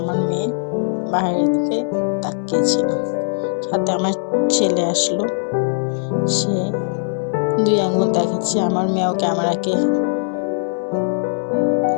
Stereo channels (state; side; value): silent; right; 66 dB below the other